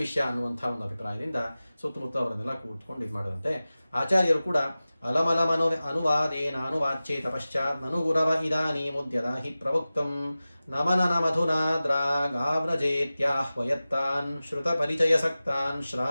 ವಿಷಯ ಅನ್ನುವಂಥ ಒಂದು ಅಭಿಪ್ರಾಯದಿಂದ ಸುತ್ತಮುತ್ತ ಅವರನ್ನೆಲ್ಲ ಕೂತ್ಕೊಂಡು ಇದು ಮಾಡಿದಂತೆ. ಆಚಾರ್ಯರು ಕೂಡ ಅಲಮಲಮನು ಅನುವಾದೇನ ಅನುವಾಚ್ಯೇತ ಪಶ್ಚಾತ್ ನನು ಗುರವ ಇದಾನೀಮುದ್ಯದ ಹಿ ಪ್ರವಕ್ತಂ ನಮನನ ಮಧುನಾ ದ್ರಾಗಾವ್ರಜೇತ್ಯಾಹ್ವಯತ್ತಾನ್ ಶ್ರುತ ಪರಿಚಯ ಸಕ್ತಾನ್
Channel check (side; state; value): both; inverted; correlation -0.96